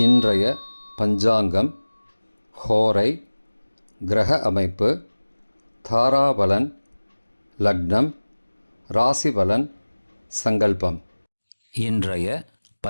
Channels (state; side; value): inverted; both; correlation -1.00